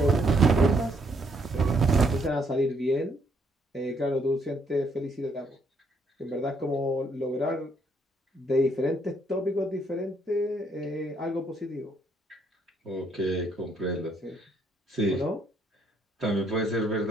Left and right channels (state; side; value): normal; both; correlation 0.70